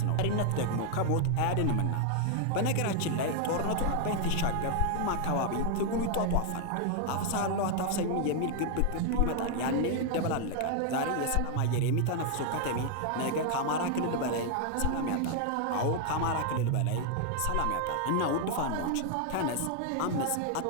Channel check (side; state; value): both; different; correlation 0.00